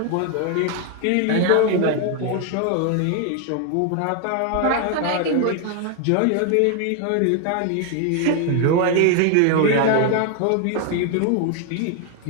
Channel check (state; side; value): different; both; correlation 0.00